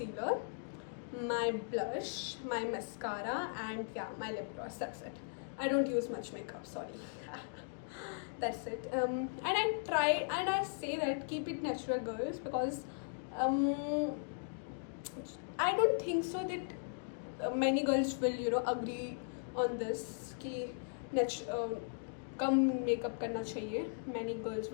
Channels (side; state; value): right; silent; digital silence